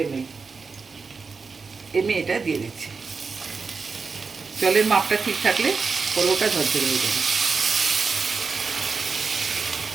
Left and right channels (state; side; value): quieter; left; 4.8 dB